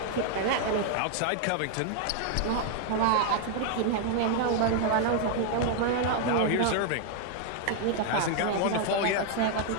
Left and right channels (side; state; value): both; different; correlation 0.00